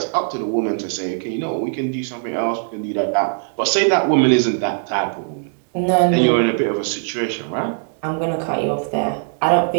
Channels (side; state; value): left; silent; digital silence